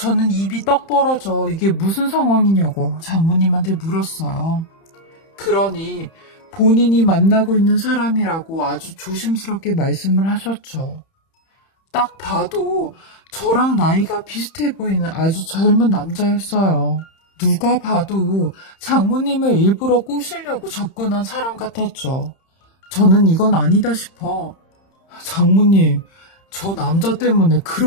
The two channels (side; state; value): right; late; 31 ms